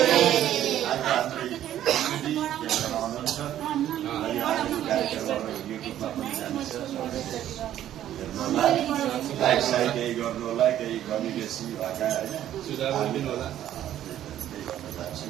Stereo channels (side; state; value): left; quieter; 11.8 dB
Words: like side केही गर्नु होला, केही कमी बेसी भएका होइन